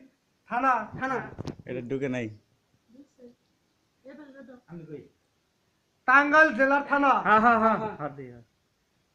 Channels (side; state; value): both; identical; correlation 1.00